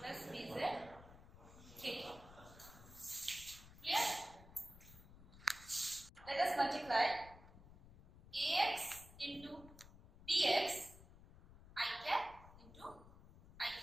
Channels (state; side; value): noise; left; rumble, 19 dB below the sound